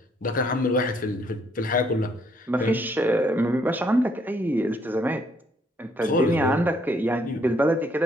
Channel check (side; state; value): both; normal; correlation 0.69